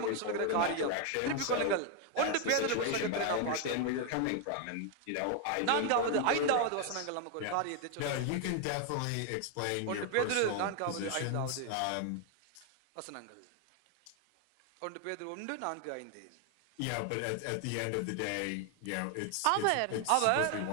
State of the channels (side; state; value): both; different; correlation 0.01